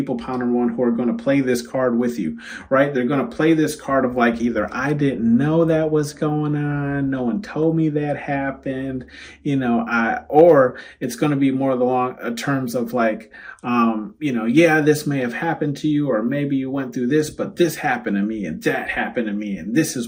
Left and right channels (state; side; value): identical; both; correlation 1.00